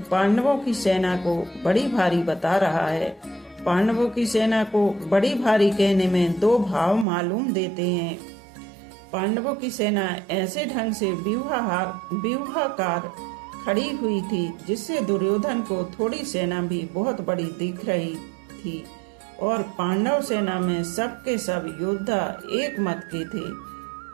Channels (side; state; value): left; drops out; at 7.1 s